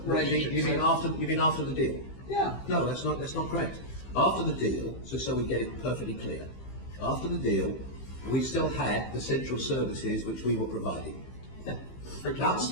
Relationship. You mean after the deal? Yeah. No, that's not correct. After the deal, so we get it perfectly clear. After the deal, we still had the central services which we were providing. Yeah.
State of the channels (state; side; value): late; right; 15 ms